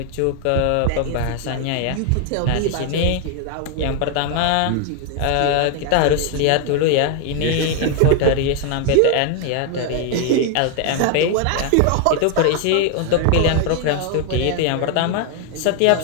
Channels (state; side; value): different; both; correlation 0.01